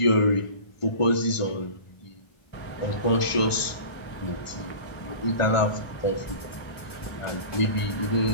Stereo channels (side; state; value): right; late; 1.5 ms